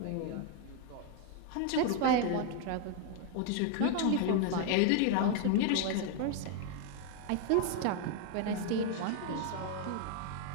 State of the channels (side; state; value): both; different; correlation 0.00